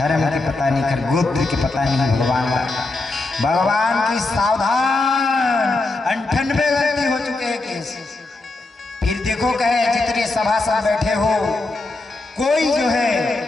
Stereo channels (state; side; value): quieter; right; 3.2 dB